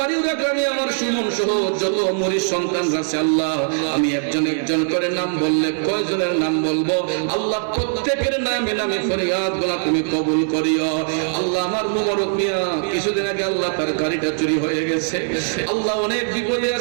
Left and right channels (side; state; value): left; silent; digital silence